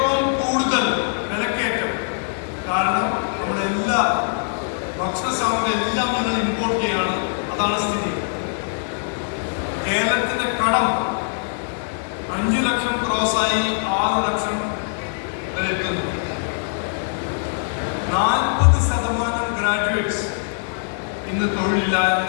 കൂടുതൽ വിലക്കയറ്റം. കാരണം നമ്മുടെ എല്ലാ ഭക്ഷണ സാമഗ്രി എല്ലാം ഞങ്ങൾ ഇമ്പോർട്ട് ചെയ്യാണ്. അതാണ് സ്ഥിതി. കേരളത്തിന്റെ കടം 5 ലക്ഷം ക്രോസായി 6 ലക്ഷം വരെ എത്തുന്നു. 40% ഗ്രാജുവേറ്റ്സ് ഇന്ന്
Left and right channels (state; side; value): silent; right; digital silence